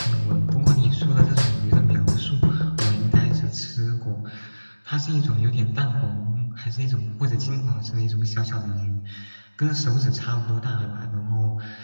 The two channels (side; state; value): both; inverted; correlation -1.00